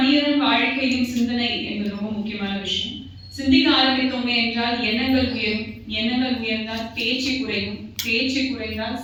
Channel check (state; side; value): identical; both; correlation 1.00